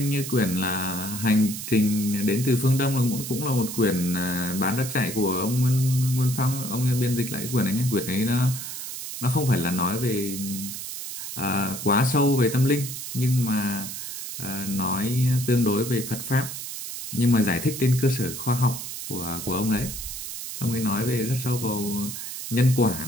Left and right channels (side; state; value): right; noise; hiss, 7 dB below the sound